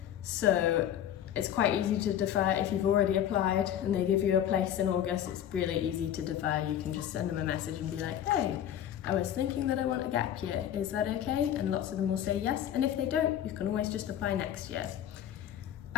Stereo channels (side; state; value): right; quieter; 10.5 dB